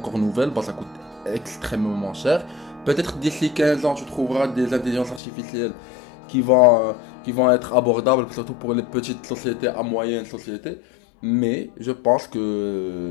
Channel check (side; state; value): right; drops out; at 5.2 s